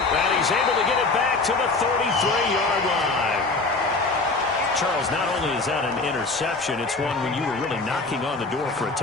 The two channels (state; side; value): quieter; right; 3.7 dB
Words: he's able to get it back to the 33-yard line. Charles, not only is that an interception, it's one when you were really knocking on the door for a